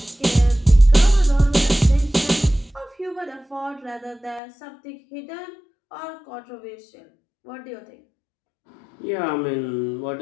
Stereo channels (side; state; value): right; drops out; at 4.4 s